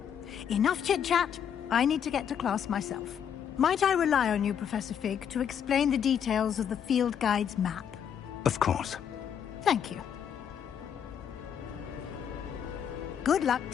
Enough chit-chat. I need to get to class myself. Might I rely on you, Professor Fig, to explain the details of the field guide's map? Of course. Thank you. Good luck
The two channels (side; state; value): right; quieter; 8.4 dB